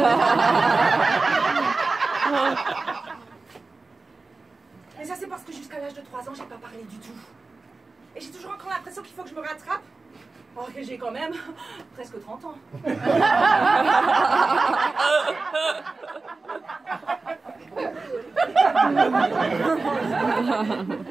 Mais ça, c'est parce que jusqu'à l'âge de 3 ans, j'ai pas parlé du tout. Et j'ai toujours encore l'impression qu'il faut que je me rattrape. Alors que j'ai quand même presque 30 ans.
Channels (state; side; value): quieter; left; 3.8 dB